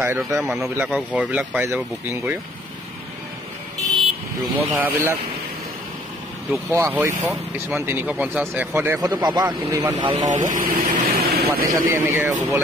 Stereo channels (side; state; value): both; normal; correlation 0.59